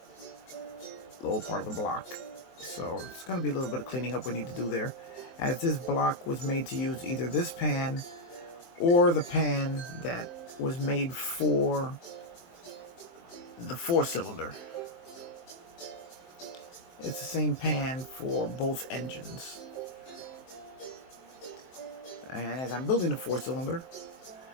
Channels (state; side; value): late; right; 23 ms